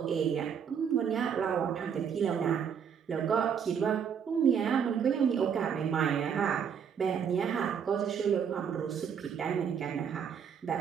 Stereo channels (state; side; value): quieter; left; 7.5 dB